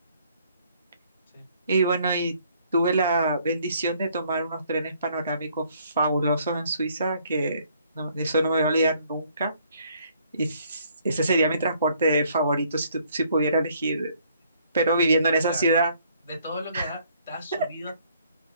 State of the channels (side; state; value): both; inverted; correlation -0.65